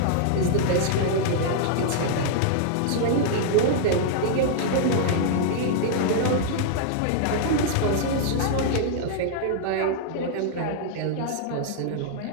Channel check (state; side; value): different; both; correlation -0.01